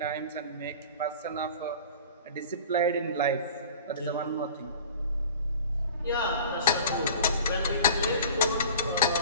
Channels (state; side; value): inverted; both; correlation -0.41